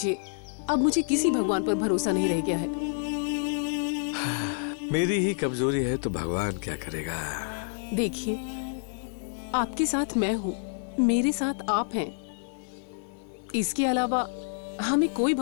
अब मुझे किसी भगवान पर भरोसा नहीं रह गया है। मेरी ही कमजोरी है तो भगवान क्या करेगा। देखिए, आपके साथ मैं हूँ, मेरे साथ आप हैं। इसके अलावा हमें कोई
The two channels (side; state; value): right; silent; 59 dB below the other